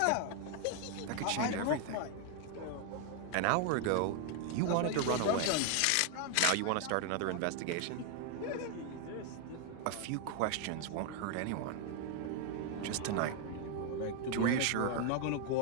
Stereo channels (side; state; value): both; different; correlation 0.00